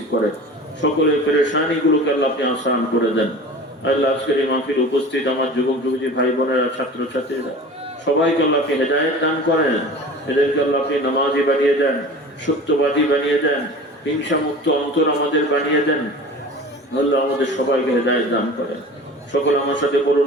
করে, সকলের পেরেশানি গুলোকে আল্লাহ আপনি আসান করে দেন। আল্লাহ আজকের এই মাহফিল উপস্থিত আমার যুবক যুবতী ভাই বোনেরা, ছাত্র ছাত্রীরা, সবাইকে আল্লাহ আপনি হেদায়েত দান করেন। এদেরকে আল্লাহ আপনি নামাজি বানিয়ে দেন, সত্যবাদী বানিয়ে দেন, হিংসা মুক্ত অন্তর আমাদের বানিয়ে দেন। আল্লাহ আমাদের সবাইকে হেদায়েত দান করেন। সকল আমার সাথে বলুন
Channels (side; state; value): both; normal; correlation 0.38